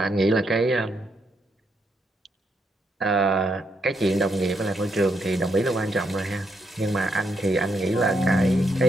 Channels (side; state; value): both; normal; correlation 0.78